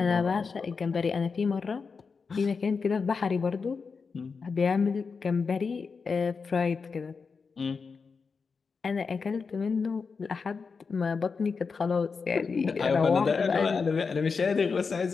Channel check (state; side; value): quieter; right; 5.1 dB